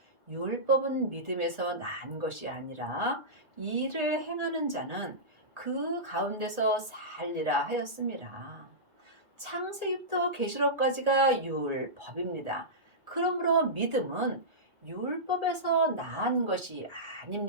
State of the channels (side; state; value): left; late; 1.8 ms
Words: 율법은 믿음에서 난 것이 아니라 이를 행하는 자는 그 가운데서 살리라 하였습니다. 창세기부터 계시록까지가 율법입니다. 그러므로 믿음은 율법에서 난 것이